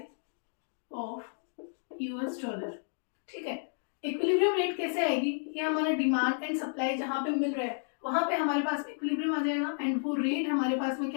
of US dollar. ठीक है, इक्विलिब्रियम रेट कैसे आएगी? ये हमारा डिमांड एंड सप्लाई जहां पे मिल रहा है वहां पे हमारे पास में इक्विलिब्रियम आ जाएगा एंड वो रेट हमारे पास में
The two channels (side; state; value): right; silent; digital silence